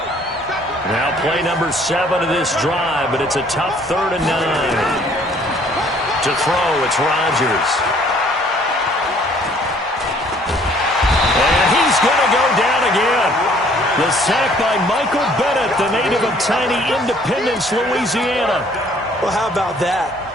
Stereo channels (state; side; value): normal; both; correlation 0.59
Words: Now play number 7 of this drive, but it's a tough 3rd and 9. To throw, it's Rodgers. And he's going to go down again. The sack by Michael Bennett, the native of tiny Independence, Louisiana. Well, how about that?